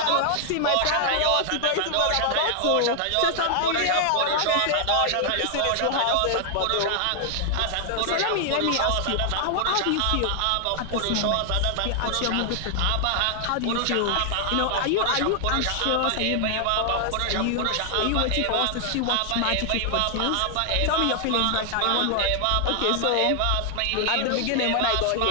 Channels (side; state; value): both; different; correlation 0.00